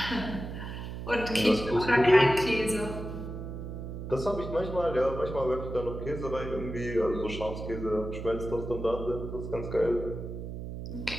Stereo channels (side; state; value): right; noise; hum, 7 dB below the sound